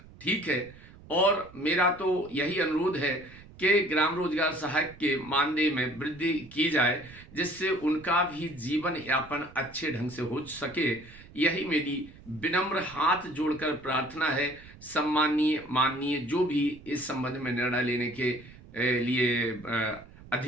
ठीक है, और मेरा तो यही अनुरोध है कि ग्राम रोजगार सहायक के मानदेय में वृद्धि की जाए जिससे उनका भी जीवन यापन अच्छे ढंग से हो सके। यही मेरी विनम्र हाथ जोड़कर प्रार्थना है। सम्माननीय, माननीय जो भी इस संबंध में निर्णय लेने के लिए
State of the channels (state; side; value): noise; right; rumble, 20 dB below the sound